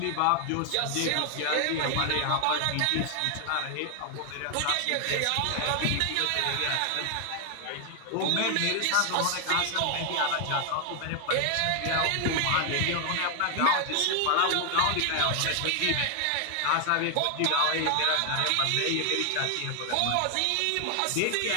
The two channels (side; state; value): both; different; correlation 0.00